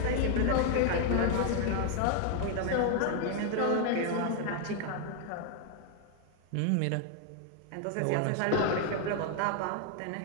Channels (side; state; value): both; different; correlation 0.00